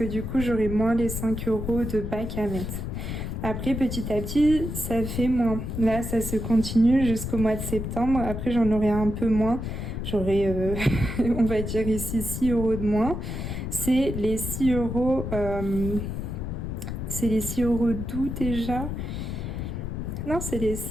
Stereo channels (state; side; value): noise; left; rumble, 5 dB below the sound